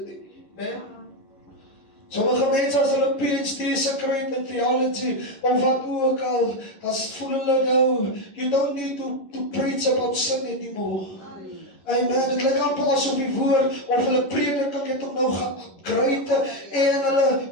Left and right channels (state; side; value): late; right; 11 ms